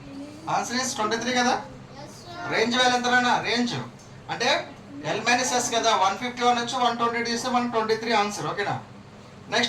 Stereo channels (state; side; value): identical; both; correlation 1.00